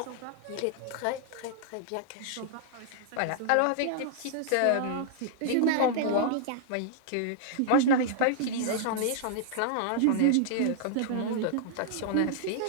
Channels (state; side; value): different; both; correlation -0.01